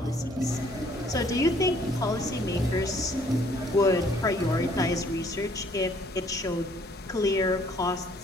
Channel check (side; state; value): both; normal; correlation 0.62